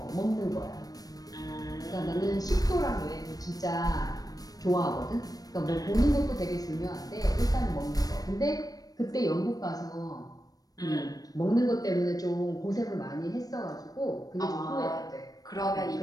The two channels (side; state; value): right; late; 0.18 ms